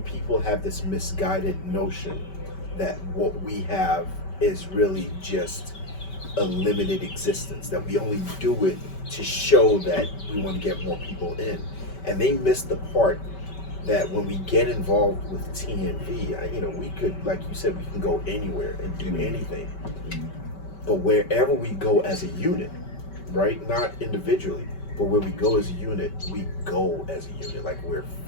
people have this misguided notion that what we have is really just a limited existence, that we only do it to show that we want to get more people in. And they miss the part that when we get involved with TNV, we could, like you said, we can go anywhere and do anything. But wherever we go as a unit, right? Not individually, but where we go as a unit, we go as a unit, like we're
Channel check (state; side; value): late; right; 5.2 ms